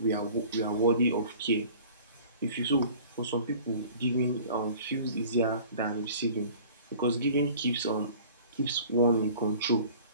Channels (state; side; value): inverted; both; correlation -0.47